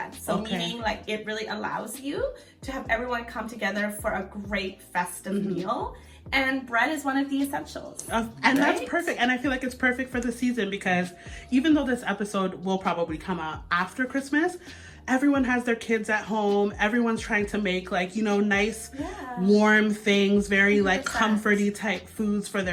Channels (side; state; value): both; identical; correlation 1.00